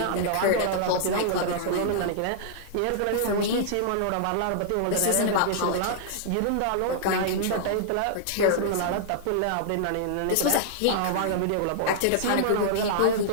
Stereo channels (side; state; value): both; different; correlation -0.01